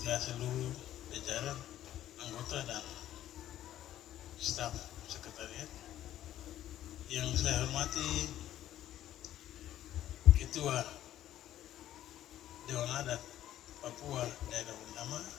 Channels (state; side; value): quieter; right; 12.5 dB